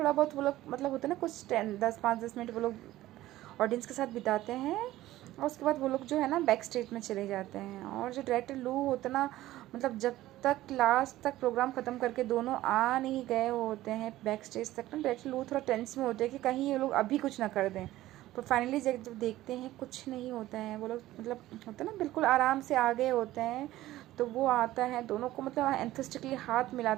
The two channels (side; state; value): left; quieter; 15.6 dB